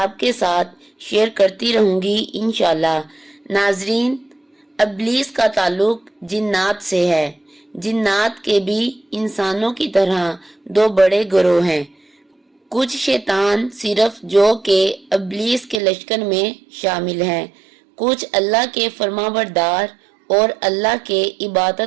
साथ शेयर करती रहूंगी इंशाल्लाह। नाजरीन, इब्लीस का ताल्लुक जिन्नात से है। जिन्नात के भी इंसानों की तरह 2 बड़े गिरोह हैं। कुछ शैतान सिर्फ जो कि इब्लीस के लश्कर में शामिल हैं, कुछ अल्लाह के फरमाबरदार और अल्लाह के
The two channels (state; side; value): drops out; left; at 15.8 s